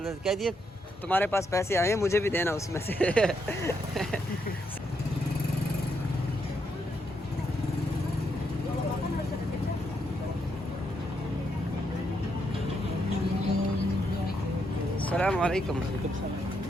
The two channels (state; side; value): normal; both; correlation 0.78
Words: जाता है। कह दिए तुम्हारे पास पैसे आए हैं, मुझे भी देना उसमें से। अस्सलाम वालेकुम।